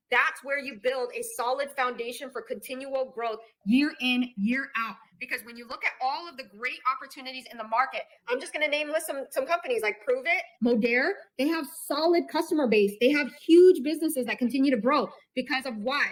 that's where you build a solid foundation for continual growth year in, year out. Because when you look at all of the great opportunities in the market, I'm just going to list some companies like Prove It, Modere. They have solid customer base. They have huge businesses that continue to grow because of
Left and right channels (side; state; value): both; identical; correlation 1.00